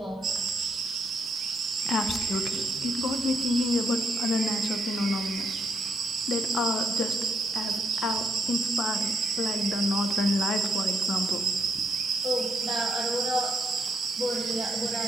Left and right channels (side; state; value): both; normal; correlation 0.75